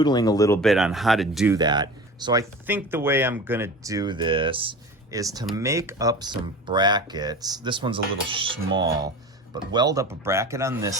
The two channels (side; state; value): both; normal; correlation 0.35